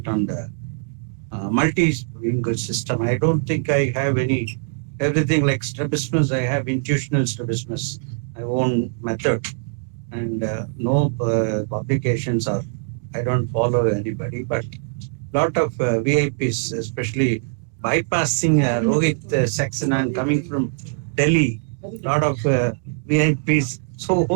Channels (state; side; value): silent; left; digital silence